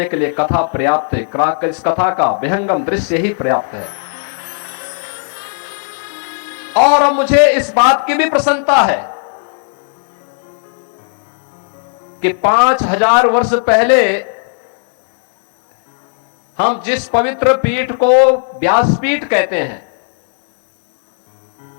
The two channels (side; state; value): right; silent; digital silence